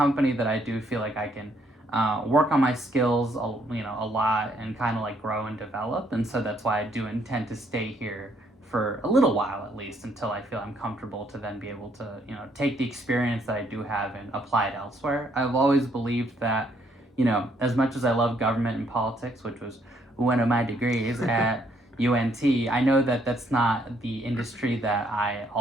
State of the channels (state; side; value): normal; both; correlation 0.69